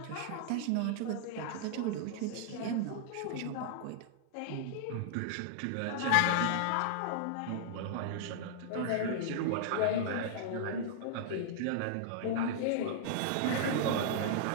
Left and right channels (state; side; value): different; both; correlation -0.01